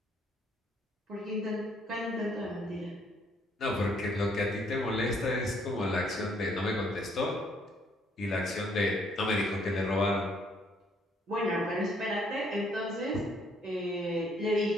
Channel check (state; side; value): normal; both; correlation 0.67